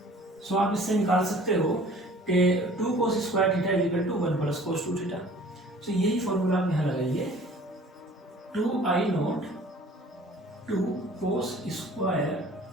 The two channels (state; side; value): normal; both; correlation 0.49